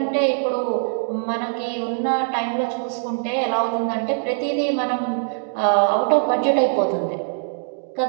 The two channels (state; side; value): silent; left; digital silence